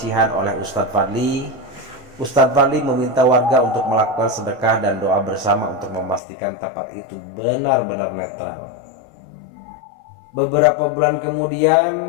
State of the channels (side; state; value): right; drops out; at 6.2 s